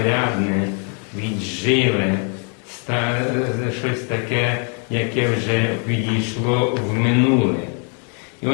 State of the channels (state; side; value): quieter; right; 39.8 dB